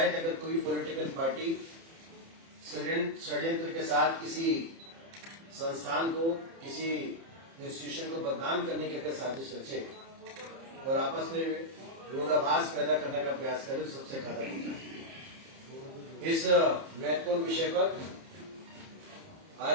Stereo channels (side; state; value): left; late; 30 ms